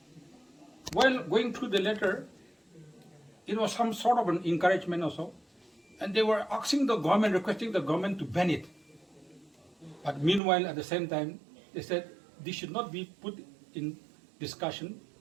while going through the letter, it was some sort of an encouragement also, and they were asking the government, requesting the government to ban it. But meanwhile, at the same time, they said this should not be put in discussion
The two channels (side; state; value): left; drops out; at 10.4 s